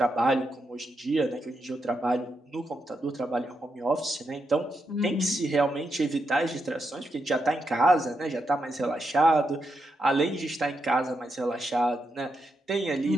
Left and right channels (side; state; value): both; normal; correlation 0.83